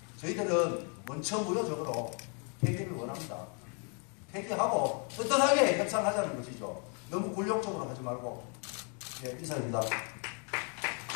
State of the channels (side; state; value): right; quieter; 38.7 dB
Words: 저희들은 원천무효적으로 폐기를 원합니다. 폐기하고 떳떳하게 협상하자는 것이죠. 너무 굴욕적으로 하지 말고. 네, 이상입니다.